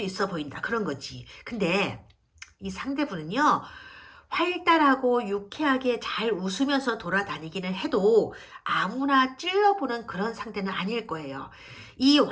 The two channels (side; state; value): both; identical; correlation 1.00